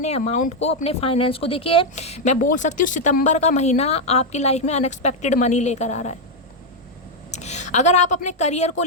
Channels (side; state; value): both; normal; correlation 0.02